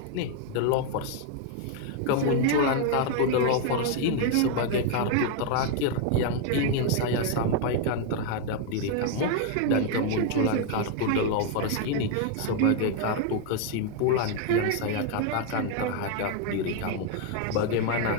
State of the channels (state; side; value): different; both; correlation 0.01